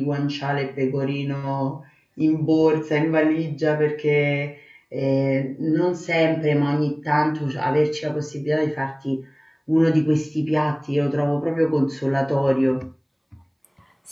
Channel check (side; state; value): both; identical; correlation 1.00